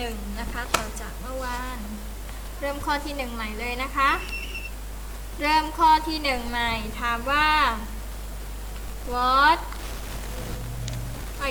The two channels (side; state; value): both; identical; correlation 1.00